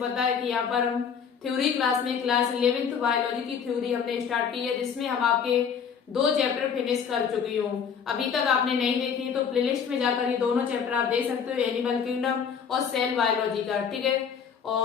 है कि यहाँ पर हम थ्योरी क्लास में क्लास 11th बायोलॉजी की थ्योरी हमने स्टार्ट की है, जिसमें हम आपके 2 चैप्टर फिनिश कर चुकी हूँ। अभी तक आपने नहीं देखी तो प्लेलिस्ट में जाकर ये दोनों चैप्टर आप देख सकते हो, एनिमल किंगडम और सेल बायोलॉजी का। ठीक है,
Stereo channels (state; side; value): quieter; right; 7.0 dB